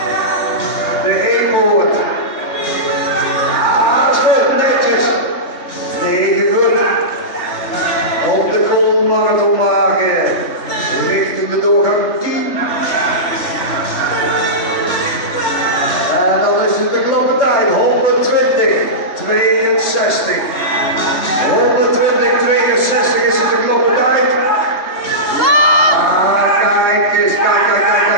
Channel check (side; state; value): right; late; 3.2 ms